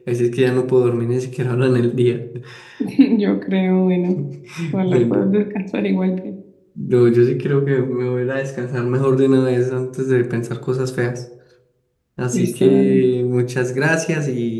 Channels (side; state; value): both; identical; correlation 1.00